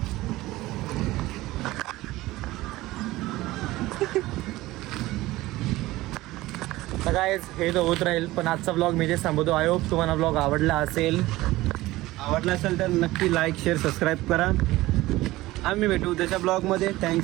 तर काय हे तर होत राहील, पण आजचा ब्लॉग मी जे थांबवतो. आय होप तुम्हाला ब्लॉग आवडला असेल. तर नक्की लाईक शेअर सबस्क्राईब करा. आम्ही भेटू त्याच्या ब्लॉगमध्ये.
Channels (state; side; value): quieter; left; 18.1 dB